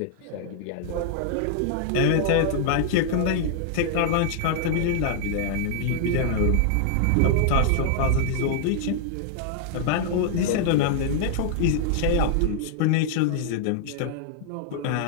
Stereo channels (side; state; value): both; different; correlation -0.01